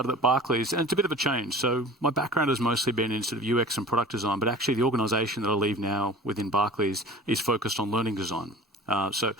Barclays, and it's a bit of a change. So my background has mostly been in sort of UX and product design, but actually the organisation that I leave now within Barclays is focused on learning design. So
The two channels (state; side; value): normal; both; correlation 0.40